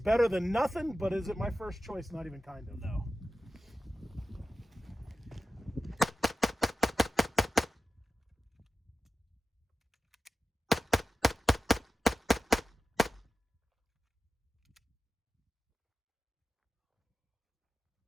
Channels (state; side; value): normal; both; correlation 0.93